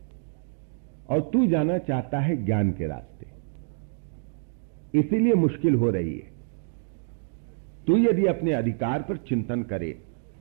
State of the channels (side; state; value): left; silent; digital silence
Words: और तू जाना चाहता है ज्ञान के रास्ते, इसीलिए मुश्किल हो रही है। तू यदि अपने अधिकार पर चिंतन करे